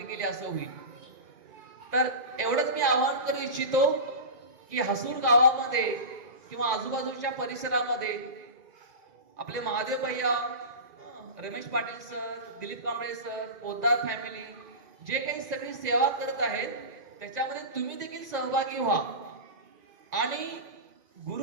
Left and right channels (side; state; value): left; late; 1.9 ms